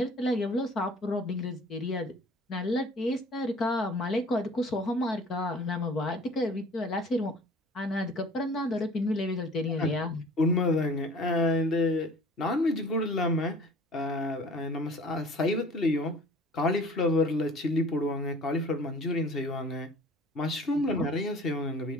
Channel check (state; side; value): normal; both; correlation 0.47